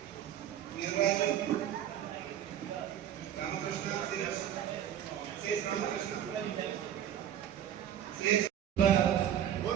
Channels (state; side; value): quieter; left; 10.3 dB